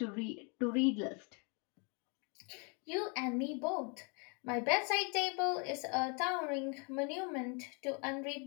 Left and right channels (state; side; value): quieter; right; 34.7 dB